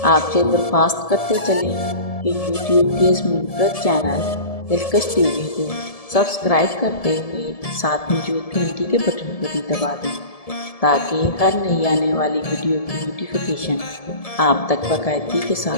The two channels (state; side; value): late; right; 1.7 ms